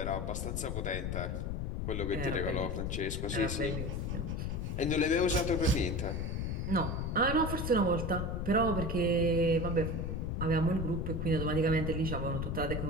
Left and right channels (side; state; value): left; noise; rumble, 2 dB below the sound